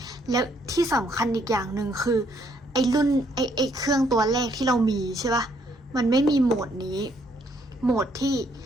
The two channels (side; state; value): both; normal; correlation 0.69